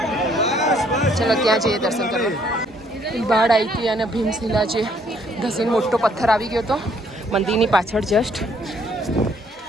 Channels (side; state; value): both; normal; correlation 0.65